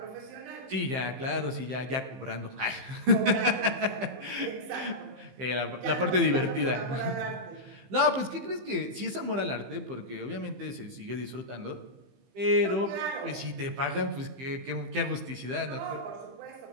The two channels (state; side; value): late; left; 15 ms